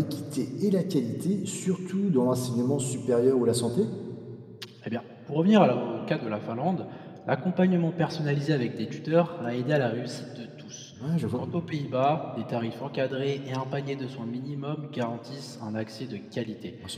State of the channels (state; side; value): identical; both; correlation 1.00